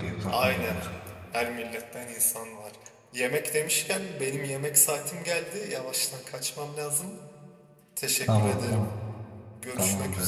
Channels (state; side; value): identical; both; correlation 1.00